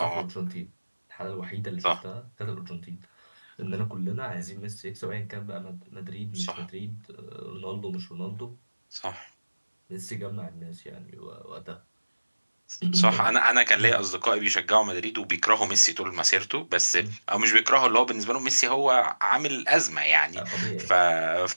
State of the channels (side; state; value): both; inverted; correlation -1.00